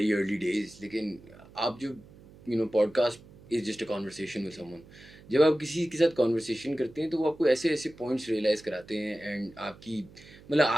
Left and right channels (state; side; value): noise; right; hum, 22 dB below the sound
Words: अर्ली डेज, लेकिन आप जो podcast is just a conversation with someone, जब आप किसी के साथ कॉन्वर्सेशन करते हैं तो वो आपको ऐसे ऐसे पॉइंट्स रियलाइज़ कराते हैं, एंड आपकी मतलब